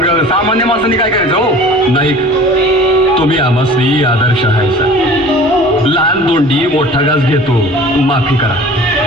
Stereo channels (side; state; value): both; normal; correlation 0.44